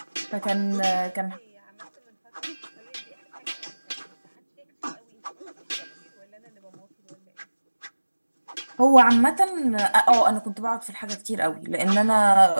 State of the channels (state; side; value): inverted; both; correlation -1.00